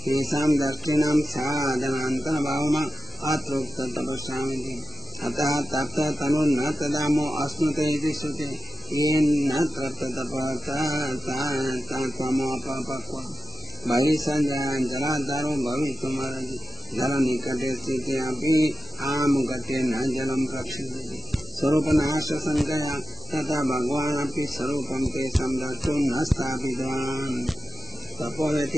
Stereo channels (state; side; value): normal; both; correlation 0.91